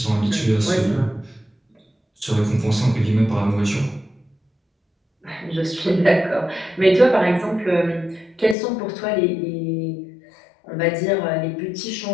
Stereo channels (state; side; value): drops out; right; at 8.6 s